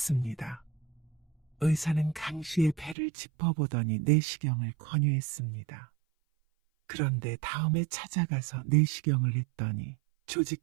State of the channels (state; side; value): drops out; left; at 3.0 s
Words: 의사는 강 씨의 배를 짚어보더니 내시경을 권유했습니다. 그런데 다음에 찾아가서 내시경을 했더니 조직